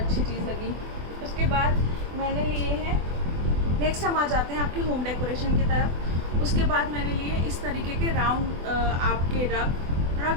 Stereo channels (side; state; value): left; late; 24 ms